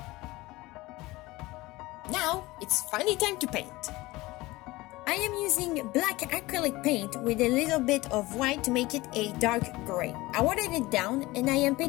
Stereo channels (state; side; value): quieter; right; 20.1 dB